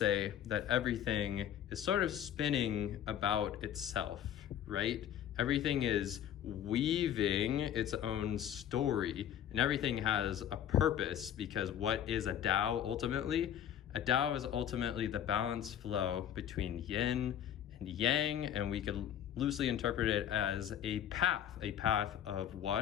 that everything is sort of spinning about itself, right? Everything is weaving its own story, and everything has a purpose, because what is a Tao ultimately? A Tao is ultimately the balanced flow between yin and yang, and we could loosely interpret it as a path of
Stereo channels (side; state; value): right; quieter; 10.2 dB